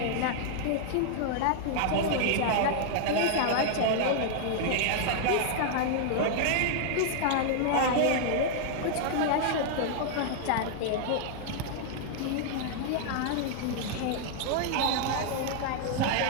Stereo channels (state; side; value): different; both; correlation -0.01